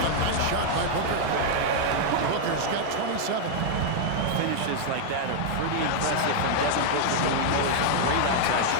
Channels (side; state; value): both; different; correlation 0.00